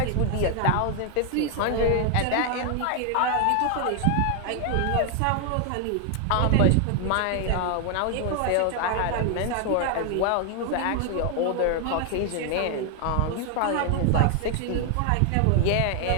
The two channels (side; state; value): both; different; correlation 0.00